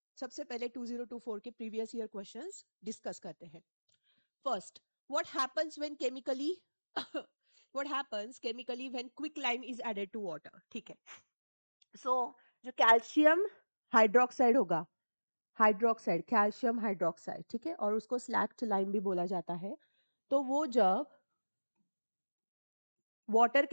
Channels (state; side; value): inverted; both; correlation -1.00